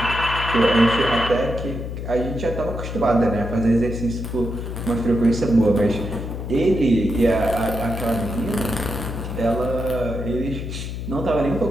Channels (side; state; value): left; noise; hum, 6 dB below the sound